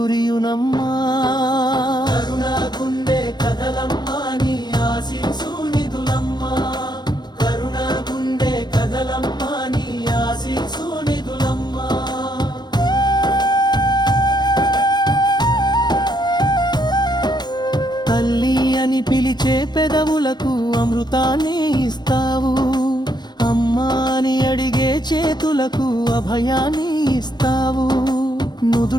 కరుణాగుండే కదలమ్మా నీ ఆశీసు నిధులమ్మా. కరుణాగుండే కదలమ్మా నీ ఆశీసు నిధులమ్మా. తల్లి అని పిలిచే పెదవులకు అమృతాన్ని ఇస్తావు. అమ్మా అని అడిగే చేతులకు అభయాన్ని ఇస్తావు.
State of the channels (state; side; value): late; right; 0.21 ms